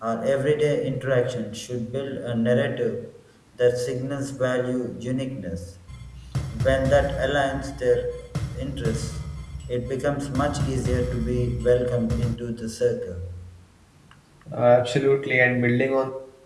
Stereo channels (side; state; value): both; identical; correlation 1.00